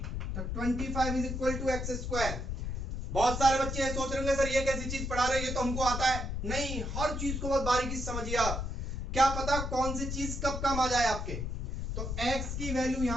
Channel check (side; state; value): left; noise; rumble, 3 dB below the sound